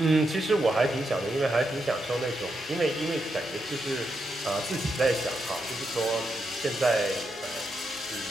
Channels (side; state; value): both; normal; correlation 0.83